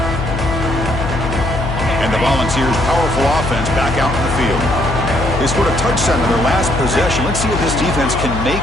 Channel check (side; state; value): left; noise; hum, 4 dB below the sound